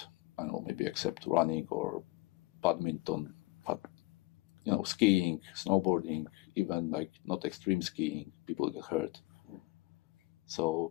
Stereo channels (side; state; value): right; quieter; 21.4 dB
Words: I don't know, maybe except running or badminton, but skiing, snowboarding, even like not extreme skiing, people get hurt.